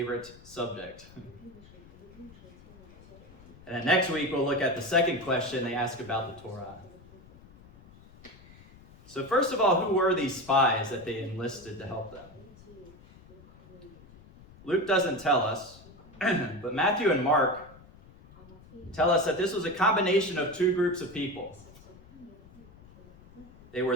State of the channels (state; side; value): noise; left; rumble, 22 dB below the sound